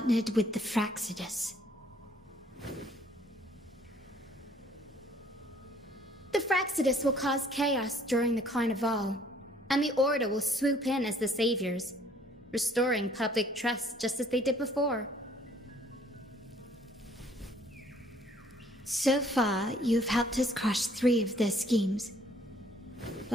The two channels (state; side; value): normal; both; correlation 0.60